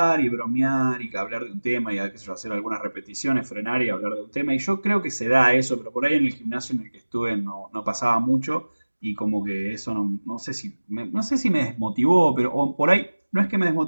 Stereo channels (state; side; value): inverted; both; correlation -1.00